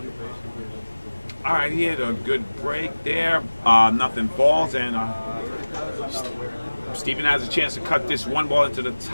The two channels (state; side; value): inverted; both; correlation -1.00